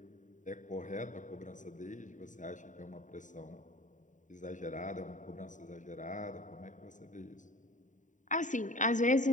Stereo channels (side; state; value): right; late; 0.36 ms